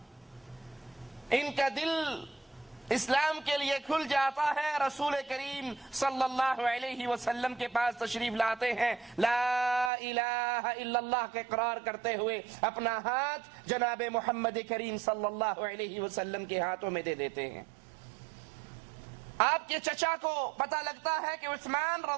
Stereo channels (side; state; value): left; drops out; at 9.9 s